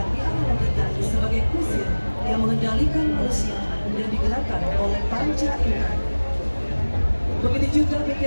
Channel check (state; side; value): inverted; both; correlation -1.00